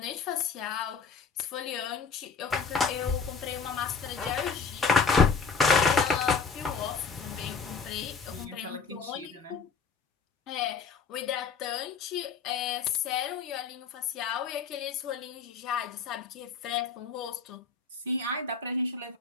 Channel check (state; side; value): quieter; right; 5.2 dB